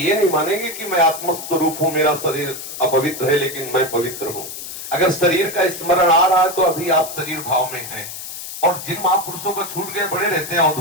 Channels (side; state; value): left; noise; hiss, 9 dB below the sound